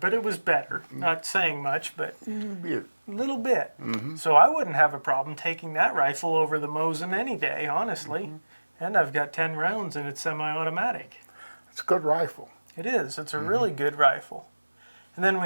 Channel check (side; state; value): both; inverted; correlation -1.00